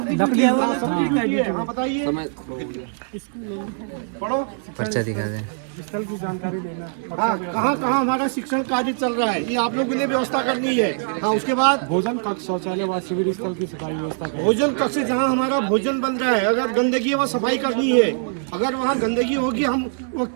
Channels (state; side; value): silent; left; 64 dB below the other